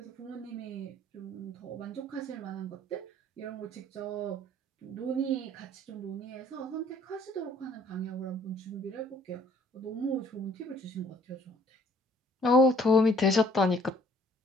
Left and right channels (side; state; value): both; normal; correlation 0.59